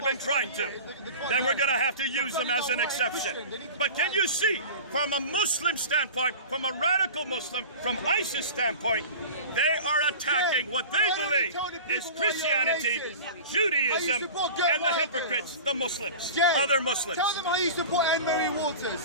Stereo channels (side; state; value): both; inverted; correlation -0.35